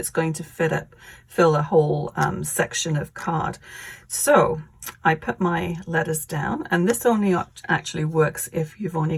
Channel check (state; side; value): identical; both; correlation 1.00